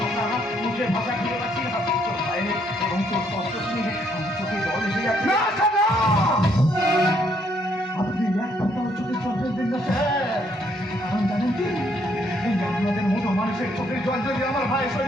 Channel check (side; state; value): both; normal; correlation 0.70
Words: মুখের ভাষা খুঁজে পাচ্ছি না। তোর ভাইয়ের এবং তোর কষ্ট শুনে আমার চোখে জল এসে যাচ্ছে। আপনি এক কথাও চোখে জল ফেলবেন না স্যার, কারণ জানেন কি, এই আপনাদের মতো মানুষের চোখের জল যদি আমার ভাইয়ের